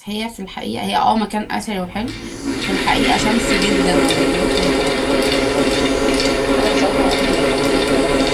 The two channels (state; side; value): identical; both; correlation 1.00